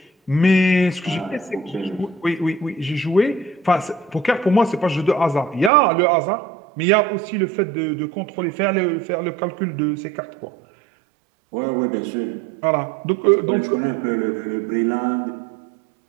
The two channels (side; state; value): left; drops out; at 5.7 s